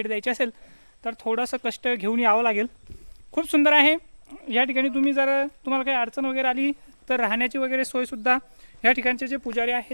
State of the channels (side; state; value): both; inverted; correlation -1.00